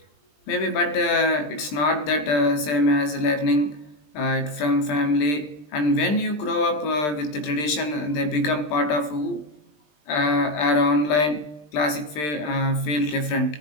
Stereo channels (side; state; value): right; late; 20 ms